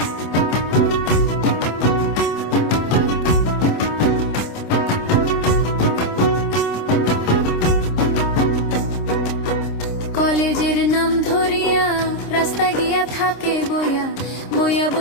কলেজের নাম ধরিয়া রাস্তা গিয়া থাকে বইয়া, বইয়া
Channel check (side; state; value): right; late; 26 ms